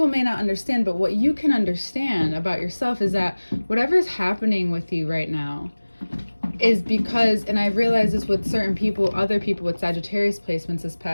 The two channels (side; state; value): both; inverted; correlation -1.00